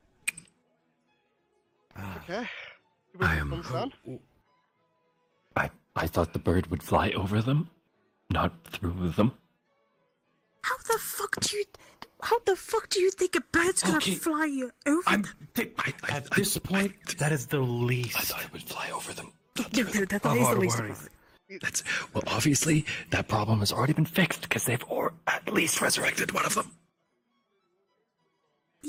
Okay. I am- Understand? I thought the bird would fly over them, not through them. how the fuck do you think a bird's gonna Okay. fly over? At this point, that is the least. I thought it would fly over them. That is the our least of worries. it. That's well, obviously that problem has already been fixed because they've at least resurrected one of them.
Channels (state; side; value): identical; both; correlation 1.00